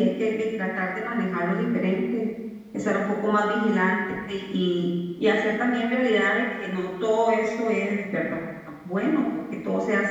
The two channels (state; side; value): identical; both; correlation 1.00